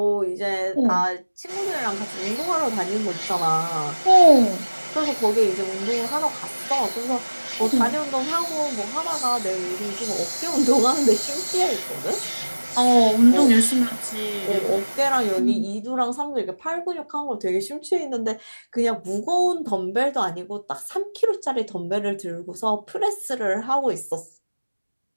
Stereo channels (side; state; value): both; inverted; correlation -1.00